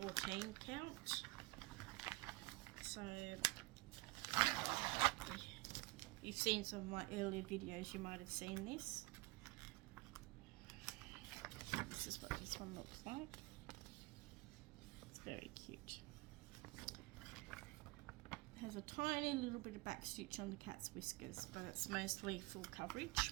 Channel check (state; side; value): quieter; left; 23.4 dB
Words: count. So you've seen some of my earlier videos, you might have seen this. This is what this one looks like. It's very cute. It has a tiny little bit of back stitch on the cat's whiskers, but it's mostly full